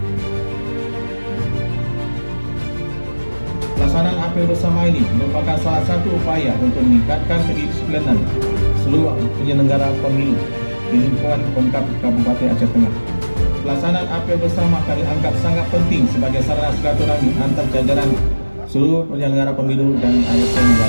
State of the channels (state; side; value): inverted; both; correlation -1.00